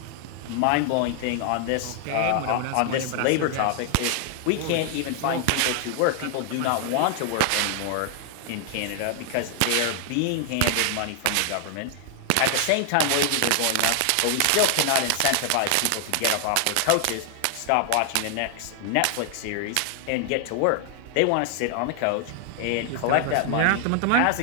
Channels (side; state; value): both; different; correlation 0.00